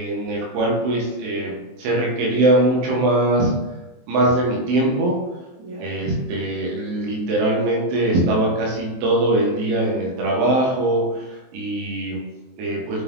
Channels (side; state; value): left; late; 23 ms